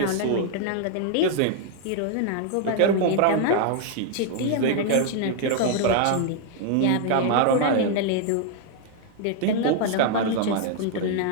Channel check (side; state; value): both; different; correlation 0.00